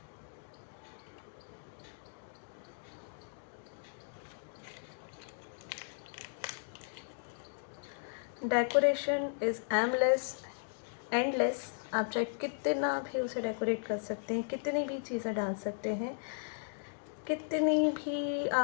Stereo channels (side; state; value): right; silent; digital silence